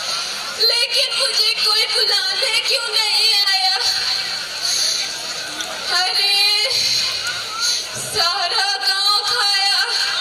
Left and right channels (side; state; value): both; identical; correlation 1.00